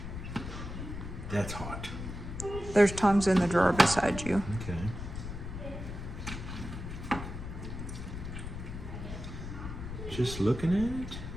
That's hot. There's tongs in the drawer beside you. Okay. Just looking at it,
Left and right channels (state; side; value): noise; left; rumble, 7 dB below the sound